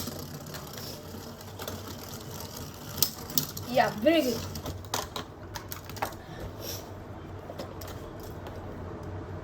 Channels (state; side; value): identical; both; correlation 1.00